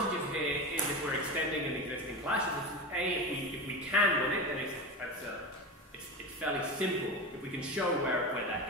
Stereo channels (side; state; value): both; normal; correlation 0.23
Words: here is if we're extending an existing clash. If we can win it, then it's fairly simple. If we can show where that